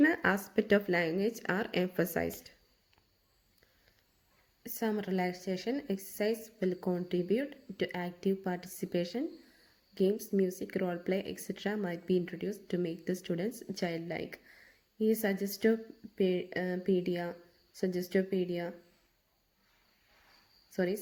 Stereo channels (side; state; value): both; identical; correlation 1.00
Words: aspect of language are emphasized. Some relaxation exercise will contribute to active participation. Games, music, role play, etc. might be introduced to make the students childlike. ഈ സജസ്റ്റോപീഡിയ